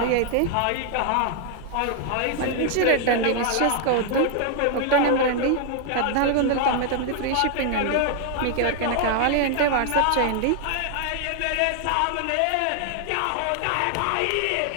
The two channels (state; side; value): different; both; correlation 0.00